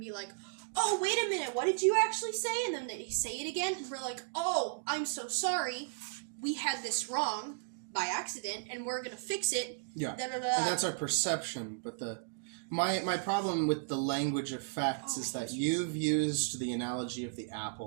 like, oh, wait a minute, what did you actually say? And then they say it again, and we're like, oh, I'm so sorry, we had this wrong by accident, and we're going to fix it. Yeah, and that's our perception, but my problem with the language of facts is that you've used the analogy of the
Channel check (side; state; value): left; silent; digital silence